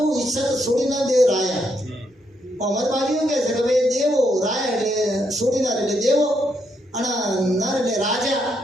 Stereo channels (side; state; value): both; normal; correlation 0.77